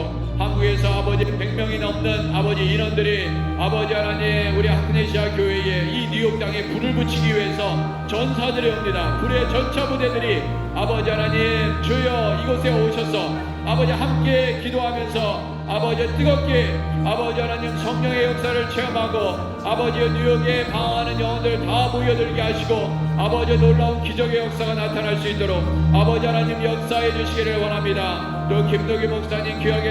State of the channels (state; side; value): identical; both; correlation 1.00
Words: 한국에서 아버지 100명이 넘는 아버지 인원들이 아버지 하나님 우리 아크네시아 교회에 이 뉴욕 땅에 불을 붙이기 위해서 전사들이 옵니다. 불의 전차 부대들이 아버지 하나님 주여 이곳에 오셔서 아버지 함께 기도하면서 아버지 뜨겁게 아버지 하나님 성령의 역사를 체험하고 아버지 뉴욕에 방황하는 영혼들 다 모여들게 하시고 아버지 놀라운 기적의 역사가 나타날 수 있도록 아버지 하나님 역사해 주시기를 원합니다. 또 김덕희 목사님